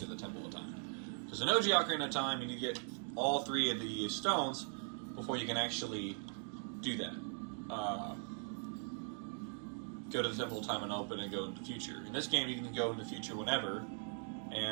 the Temple of Time. Because in OG Ocarina of Time, you need to get all 3 of the stones before you can actually do that. Go to the Temple of Time and open and go into the future. In this game, you can go in the future whenever,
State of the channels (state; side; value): silent; left; 51 dB below the other